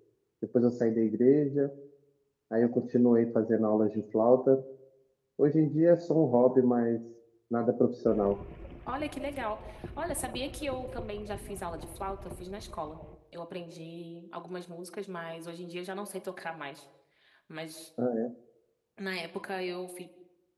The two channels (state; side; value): identical; both; correlation 1.00